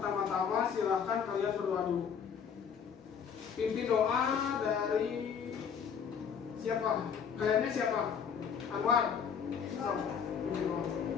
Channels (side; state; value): right; quieter; 7.1 dB